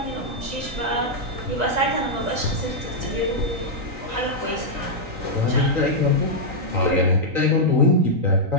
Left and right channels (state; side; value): late; left; 3.9 ms